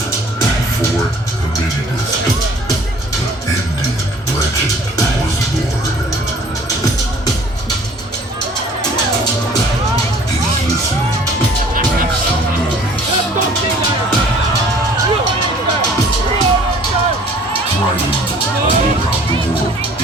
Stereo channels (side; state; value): both; normal; correlation 0.53